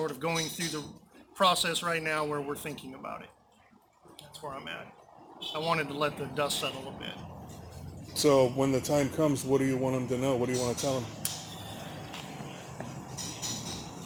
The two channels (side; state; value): both; identical; correlation 1.00